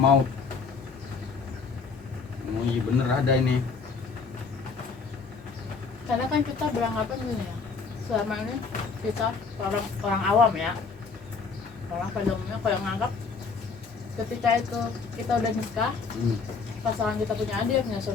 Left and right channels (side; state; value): right; quieter; 4.9 dB